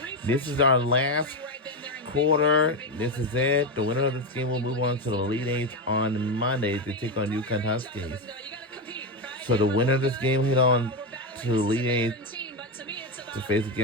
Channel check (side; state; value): both; normal; correlation 0.11